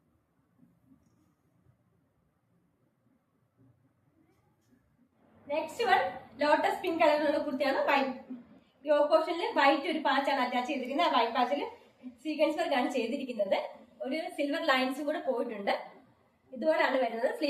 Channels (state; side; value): identical; both; correlation 1.00